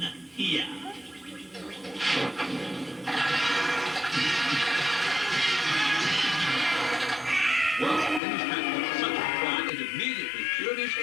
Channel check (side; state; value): right; drops out; at 8.2 s